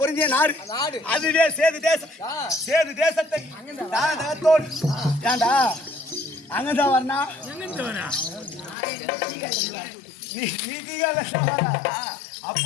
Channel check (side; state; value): right; drops out; at 8.8 s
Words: பொருந்திய நாடு அதுவே சேது தேசம் சேது தேசத்தை தானத்தோடு ஏண்டா அங்கதான் வரணா